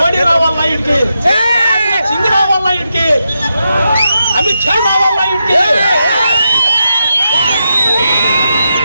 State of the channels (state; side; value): inverted; both; correlation -0.86